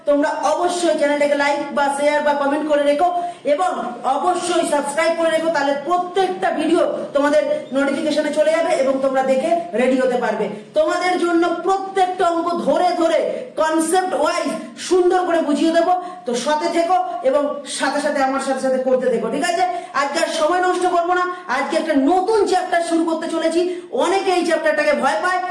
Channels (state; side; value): identical; both; correlation 1.00